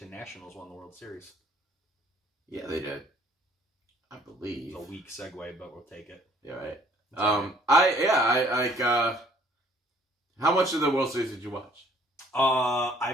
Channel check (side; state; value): both; normal; correlation 0.59